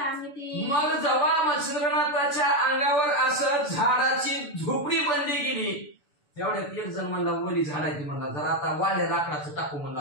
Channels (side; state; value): right; late; 6.9 ms